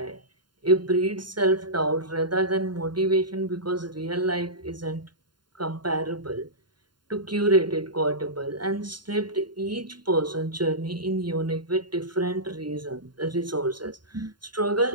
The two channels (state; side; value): late; left; 0.71 ms